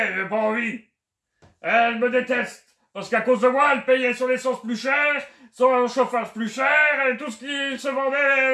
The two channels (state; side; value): identical; both; correlation 1.00